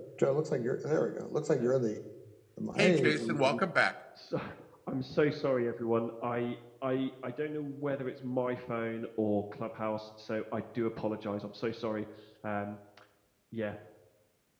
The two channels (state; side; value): identical; both; correlation 1.00